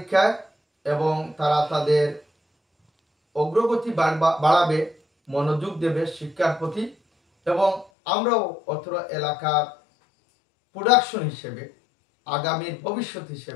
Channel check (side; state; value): right; drops out; at 7.9 s